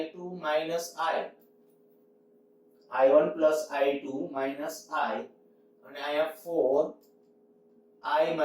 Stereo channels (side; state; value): both; identical; correlation 1.00